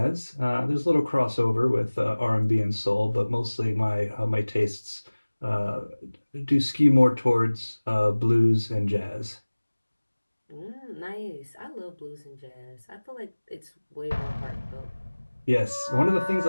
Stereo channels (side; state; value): both; inverted; correlation -1.00